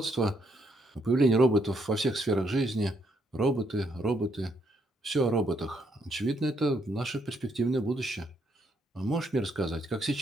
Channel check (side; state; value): both; normal; correlation 0.74